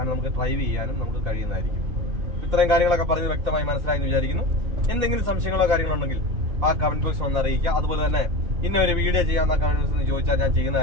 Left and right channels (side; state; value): left; late; 2.8 ms